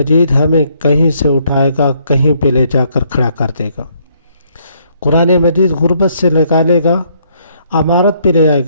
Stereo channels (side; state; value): both; inverted; correlation -0.69